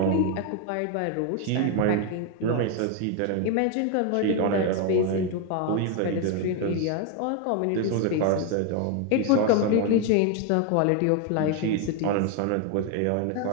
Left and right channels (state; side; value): different; both; correlation 0.01